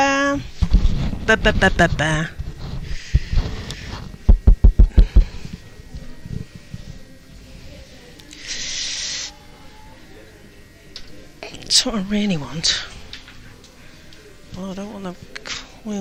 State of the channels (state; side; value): identical; both; correlation 1.00